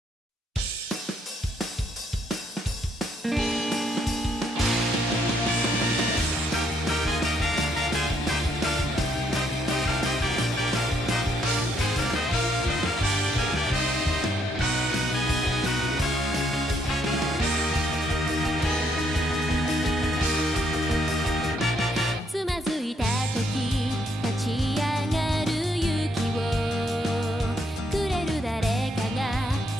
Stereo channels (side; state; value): both; normal; correlation 0.73